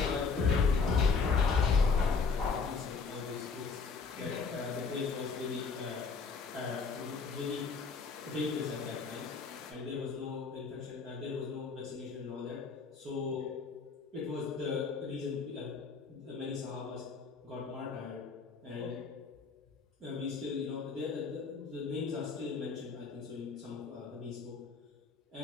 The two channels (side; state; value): right; quieter; 5.0 dB